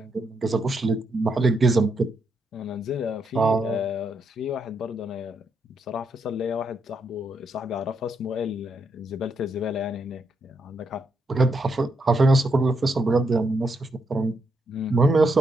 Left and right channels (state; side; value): normal; both; correlation 0.79